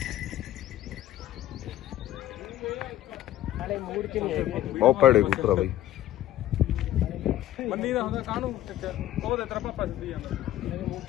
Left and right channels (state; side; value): quieter; right; 13.4 dB